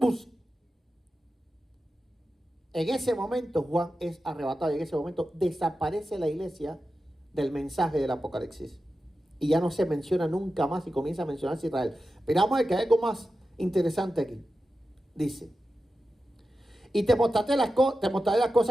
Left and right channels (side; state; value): both; normal; correlation 0.92